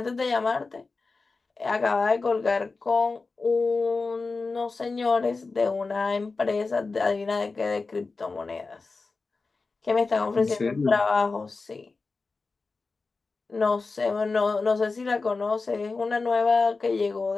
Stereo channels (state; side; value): quieter; right; 4.0 dB